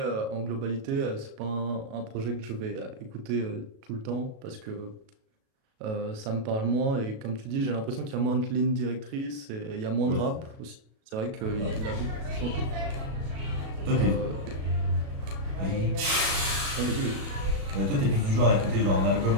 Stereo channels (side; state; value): left; late; 37 ms